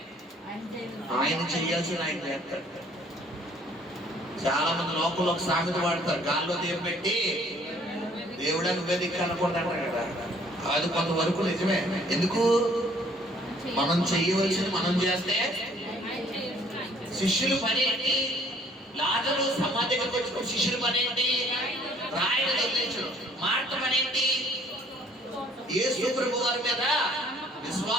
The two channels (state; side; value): normal; both; correlation 0.59